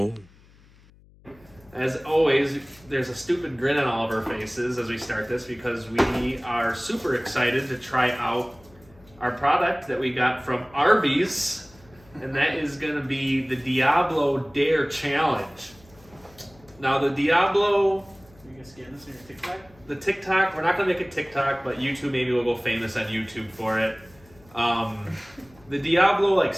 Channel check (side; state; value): left; noise; hum, 27 dB below the sound